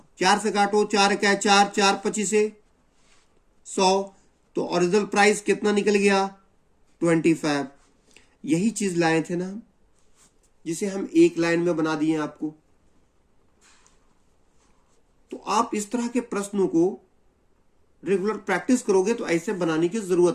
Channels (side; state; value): both; identical; correlation 1.00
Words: 4 से काटो, 4 1 4, 4 25 100, तो ओरिजिनल प्राइस कितना निकल गया? 25। यही चीज लाए थे ना हम, जिसे हम एक लाइन में बना दिए आपको। तो आप इस तरह के प्रश्नों को रेगुलर प्रैक्टिस करोगे तो ऐसे बनाने की